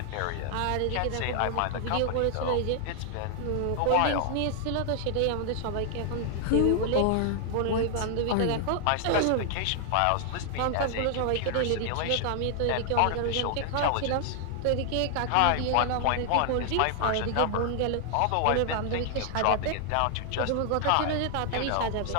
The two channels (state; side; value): different; both; correlation 0.00